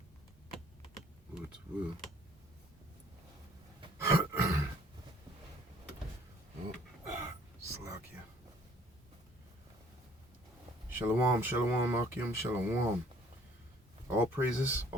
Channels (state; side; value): normal; both; correlation 0.58